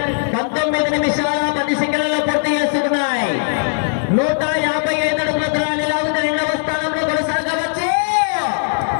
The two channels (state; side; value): silent; right; 67 dB below the other